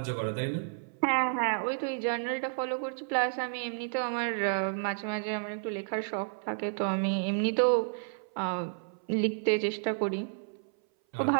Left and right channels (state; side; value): silent; left; 57 dB below the other